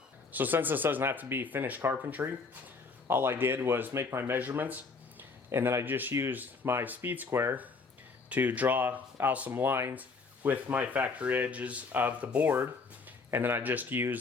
So since this doesn't have to be finished carpentry, all I did was make my measurements, and then I just used my speed square to draw out some lines with my factory edges of the board, and then I just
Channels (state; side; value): quieter; right; 4.4 dB